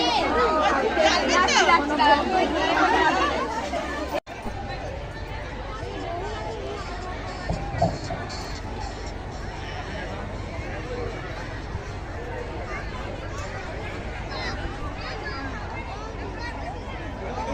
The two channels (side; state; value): both; identical; correlation 1.00